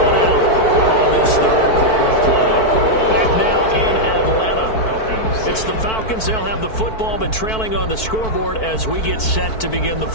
out on this 3rd quarter play. Back now in Atlanta. It's the Falcons. They'll have the football, but trailing on the scoreboard as we get set to begin the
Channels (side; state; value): right; late; 4.5 ms